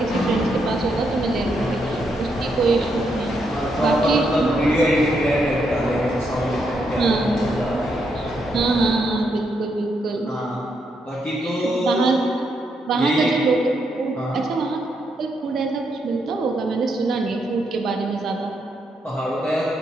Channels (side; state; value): both; normal; correlation 0.79